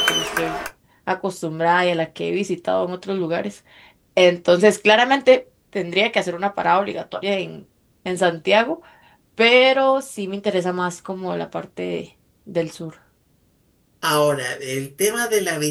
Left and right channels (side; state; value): both; identical; correlation 1.00